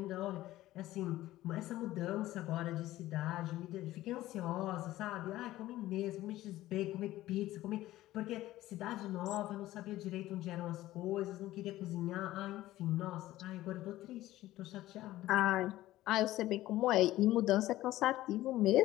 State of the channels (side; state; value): right; quieter; 15.7 dB